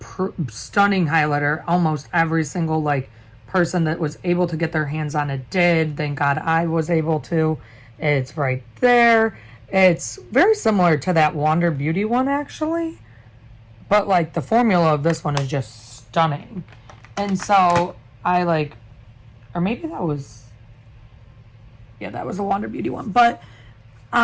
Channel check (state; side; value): identical; both; correlation 1.00